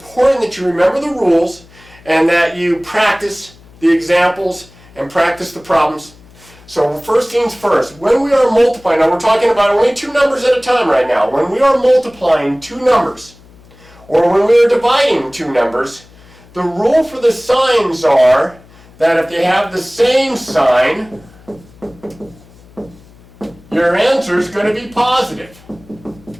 that you remember the rules and that you practice the examples and practice the problems. So first things first, when we are multiplying, now we're talking about only two numbers at a time right now. When we are multiplying two numbers, or when we are dividing two numbers, the rule for the signs are that if they have the same sign, your answer is going to be positive.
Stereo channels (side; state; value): left; noise; hum, 25 dB below the sound